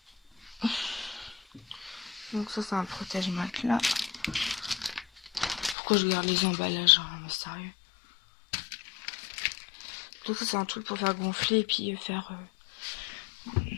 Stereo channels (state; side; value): drops out; right; at 5.8 s